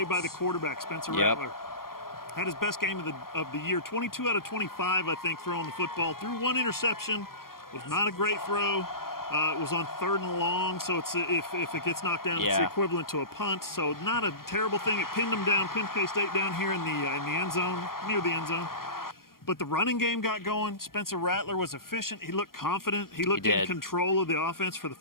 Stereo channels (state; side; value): late; right; 0.92 ms